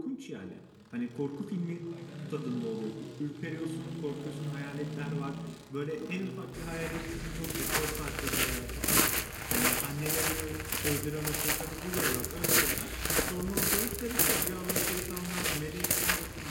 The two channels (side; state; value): both; identical; correlation 1.00